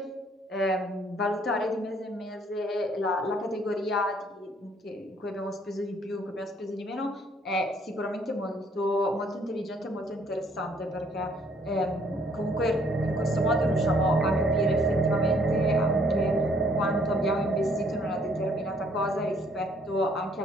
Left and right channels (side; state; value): both; normal; correlation 0.64